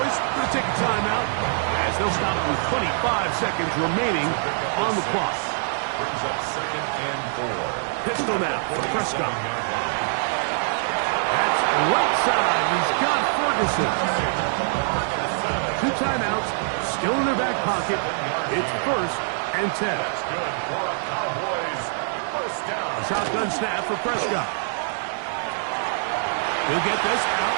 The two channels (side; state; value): left; silent; digital silence